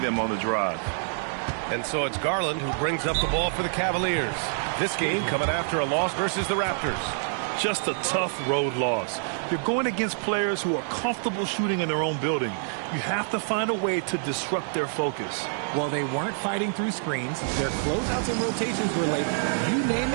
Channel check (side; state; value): left; silent; digital silence